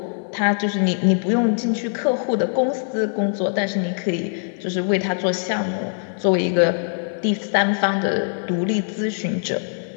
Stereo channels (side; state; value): right; silent; digital silence